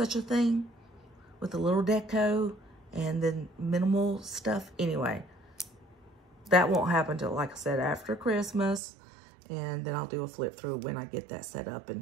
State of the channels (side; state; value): left; drops out; at 8.8 s